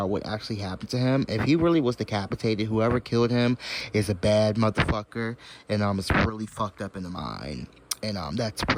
what actually happened to him. If he really was decapitated, whoever killed him is a bad motherfucker, and it's really fucked up in the mind. And that's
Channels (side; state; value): both; identical; correlation 1.00